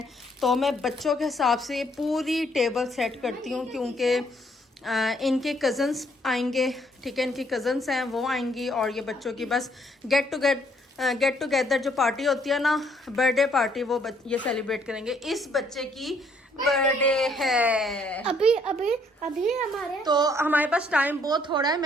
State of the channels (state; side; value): normal; both; correlation 0.67